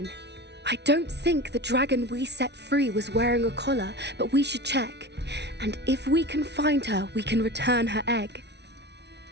I don't think the dragon we set free was wearing a collar, but we should check. And if we can find her, we can return her egg.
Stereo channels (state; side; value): late; left; 0.50 ms